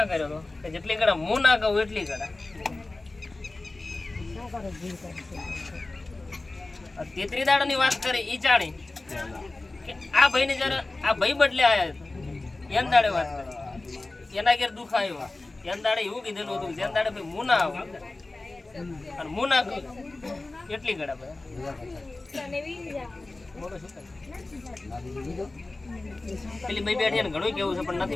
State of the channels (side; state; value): right; quieter; 3.1 dB